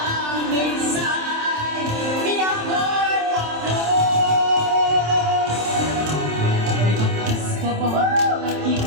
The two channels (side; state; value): left; late; 27 ms